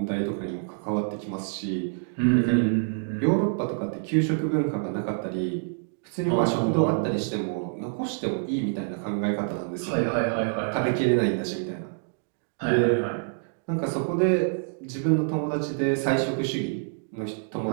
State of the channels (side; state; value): left; silent; digital silence